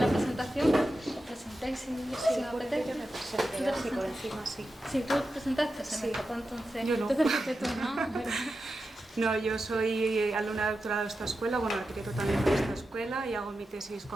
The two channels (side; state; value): both; normal; correlation 0.91